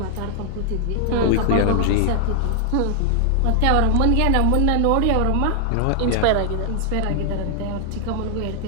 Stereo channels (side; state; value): both; different; correlation 0.00